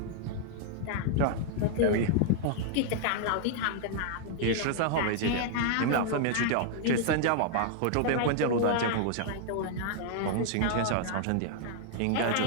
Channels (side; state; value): both; different; correlation -0.01